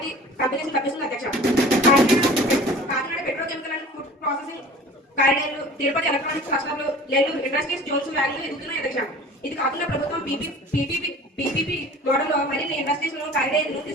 కంపెనీస్ లభిస్తుంది అధ్యక్ష. Kakinada petrochemical and food processing కారిడార్లు, తిరుపతి ఎలక్ట్రానిక్స్ క్లస్టర్లు, నెల్లూరు ఇండస్ట్రీస్ జోన్స్ వ్యాలీలు ఎదుగుతున్నాయి అధ్యక్ష. ఇది కాకుండా ప్రభుత్వం పీపీపీ మోడల్లో మరిన్ని ఇండస్ట్రీస్ కారిడార్లు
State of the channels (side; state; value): both; normal; correlation 0.44